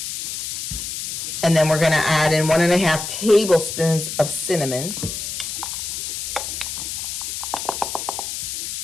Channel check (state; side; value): noise; left; hiss, 5 dB below the sound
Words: And then we're going to add in 1.5 tablespoons of cinnamon.